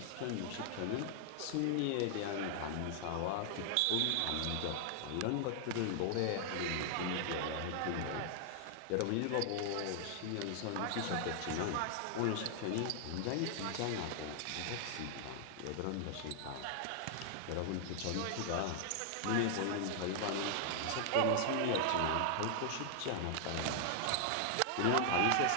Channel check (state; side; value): different; both; correlation 0.00